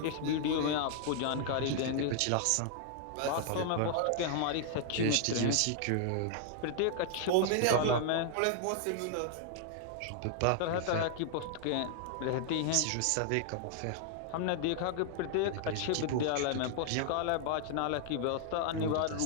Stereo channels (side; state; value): both; different; correlation 0.00